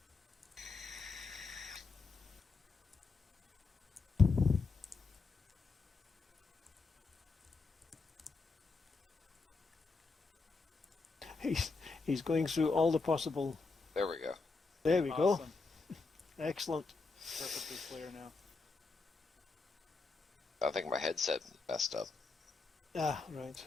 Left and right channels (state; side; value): quieter; right; 4.1 dB